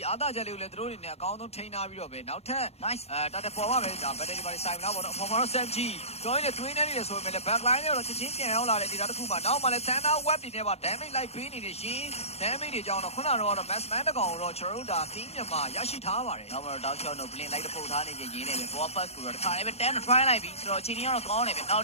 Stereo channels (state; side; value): late; right; 0.30 ms